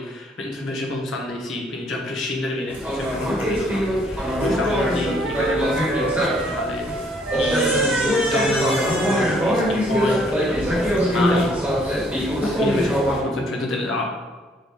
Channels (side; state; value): both; normal; correlation 0.64